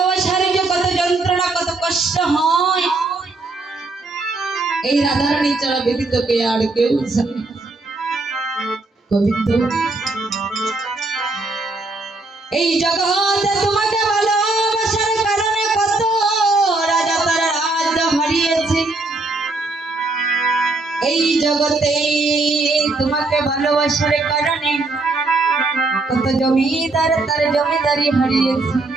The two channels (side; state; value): left; quieter; 3.2 dB